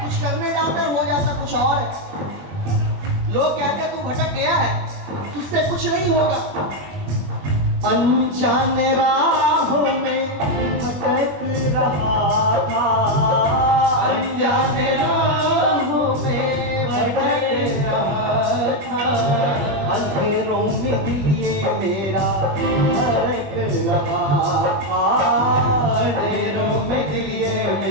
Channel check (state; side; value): late; left; 21 ms